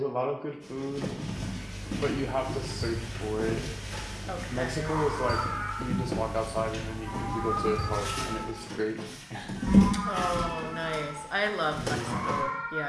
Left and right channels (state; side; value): identical; both; correlation 1.00